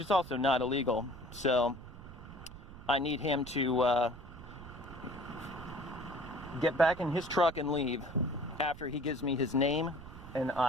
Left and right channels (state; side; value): noise; right; rumble, 15 dB below the sound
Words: also not illegal. So I need him to get back in his truck and leave after he gives me his name and